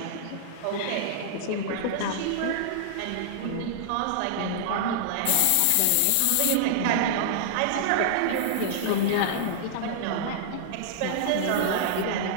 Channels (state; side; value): different; both; correlation -0.01